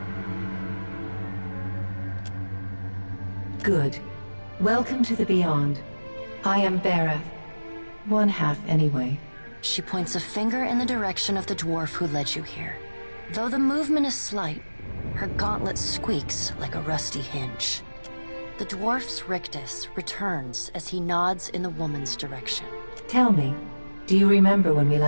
Good. Welcome to the Beyond. I am Berath. One half, anyway. She points a finger in the direction of the dwarf who led you here. Though the movement is slight, her gauntlet squeaks like a rusty hinge. The dwarf's rictus returns as he nods in the woman's direction. Tell me, do you remember when we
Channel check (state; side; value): inverted; both; correlation -1.00